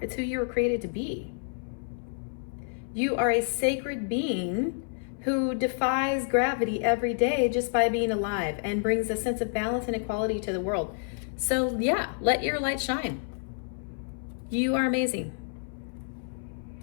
It's who you were created to be. You are a sacred being who defies gravity every day just by being alive and brings a sense of balance and equality to the world. So yeah, let your light shine. You are amazing.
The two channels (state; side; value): silent; right; 59 dB below the other